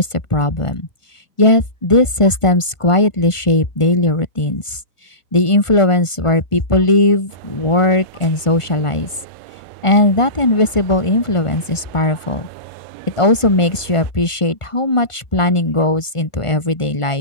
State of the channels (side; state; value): right; late; 1.5 ms